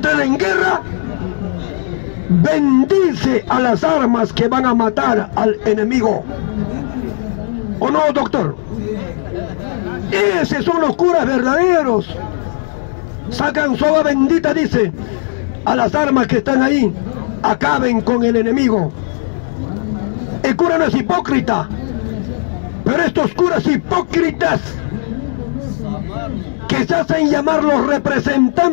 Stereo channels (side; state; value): right; silent; digital silence